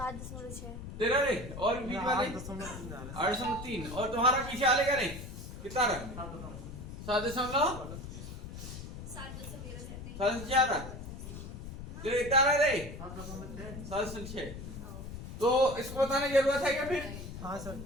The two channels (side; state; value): left; noise; rumble, 10 dB below the sound